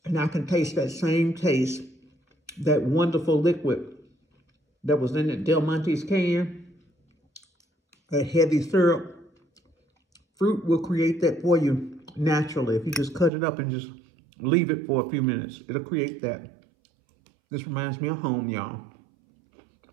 And I can taste that same taste, that wonderful liquid that was in that Del Monte's can, that heavy syrup. Fruit will create that for you naturally. If you just cut it up and just leave it for a few minutes, it'll create that. This reminds me of home, y'all.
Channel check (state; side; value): drops out; left; at 13.3 s